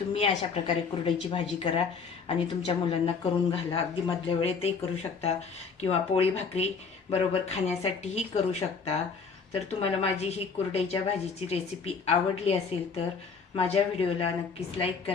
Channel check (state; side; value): quieter; right; 5.3 dB